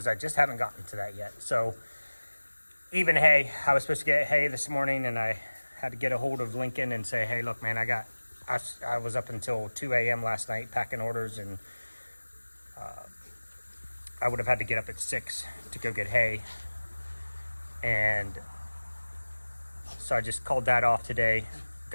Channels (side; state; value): both; inverted; correlation -1.00